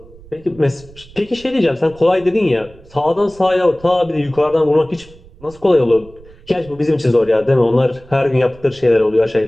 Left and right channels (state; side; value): noise; right; rumble, 23 dB below the sound